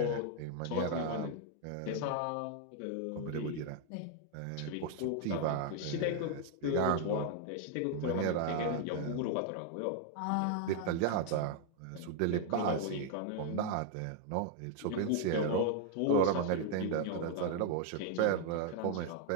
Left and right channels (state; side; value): different; both; correlation 0.00